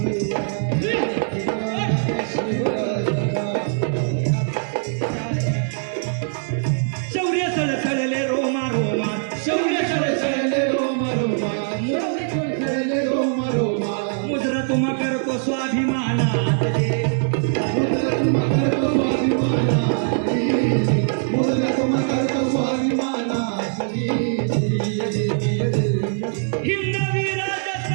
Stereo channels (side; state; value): left; silent; digital silence